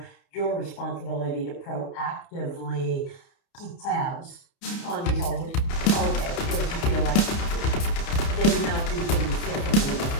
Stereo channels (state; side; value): late; right; 30 ms